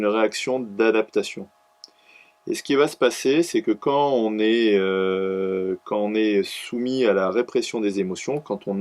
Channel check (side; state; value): both; identical; correlation 1.00